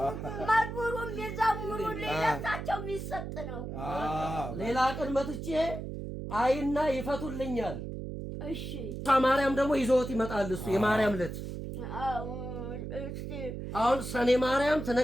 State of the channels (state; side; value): noise; right; hum, 7 dB below the sound